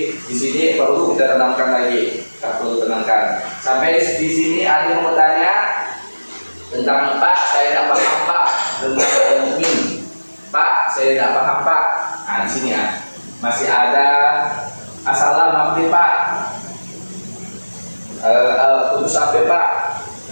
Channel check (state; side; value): inverted; both; correlation -1.00